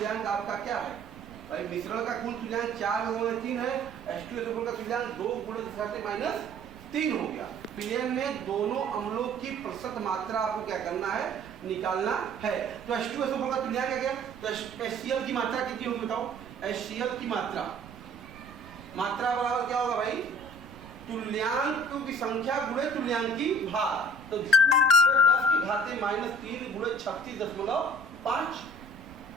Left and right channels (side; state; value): right; noise; rumble, 20 dB below the sound